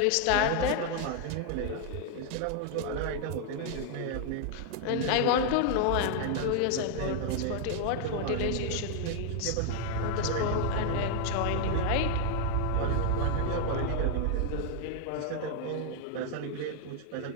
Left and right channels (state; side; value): different; both; correlation 0.00